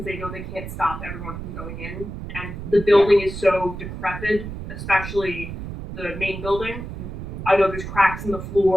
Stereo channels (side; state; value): right; noise; rumble, 8 dB below the sound